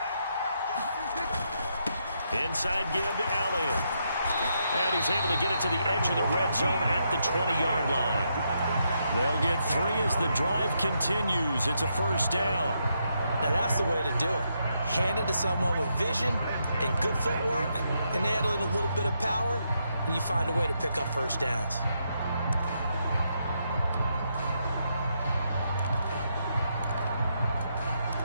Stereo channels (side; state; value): both; inverted; correlation -0.80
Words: Inside give to Elliott. And he's able to get it to the edge of the red zone at the 20-yard line. They'll get 3 as the drive continues. It's a 1st down. Now that's the way to do it. Hand it to someone with vision and good footwork and add in a little bit of power, and you find a way to pick up 1st downs.